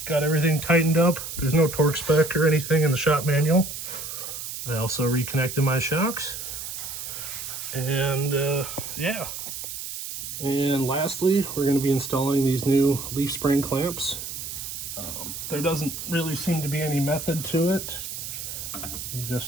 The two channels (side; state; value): right; noise; hiss, 7 dB below the sound